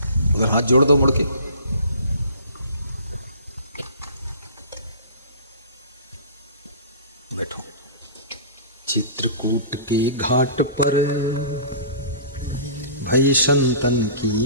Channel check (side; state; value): both; inverted; correlation -0.41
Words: उधर हाथ जोड़ दो मुड़ के। बैठो। चित्रकूट के घाट पर भई संतन की